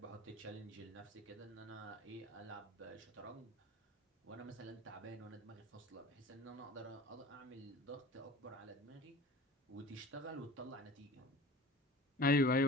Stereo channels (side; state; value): both; normal; correlation 0.40